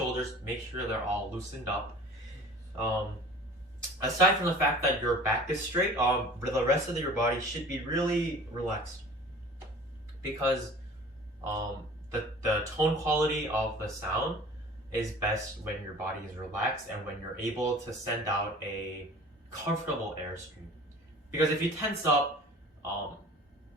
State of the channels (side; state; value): both; normal; correlation 0.44